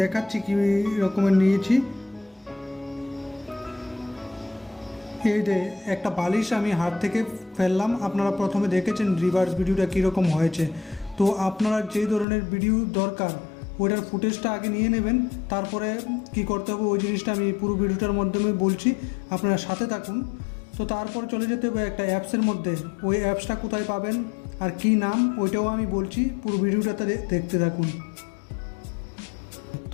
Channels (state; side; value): drops out; right; at 12.2 s